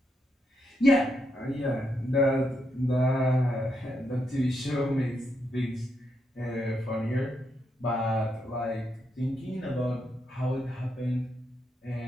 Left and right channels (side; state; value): both; normal; correlation 0.80